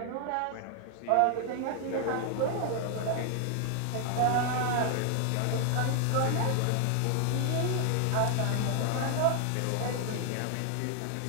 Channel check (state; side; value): different; both; correlation 0.00